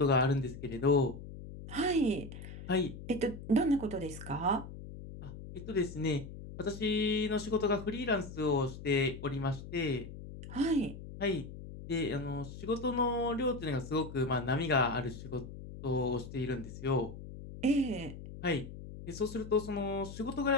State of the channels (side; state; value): left; noise; hum, 12 dB below the sound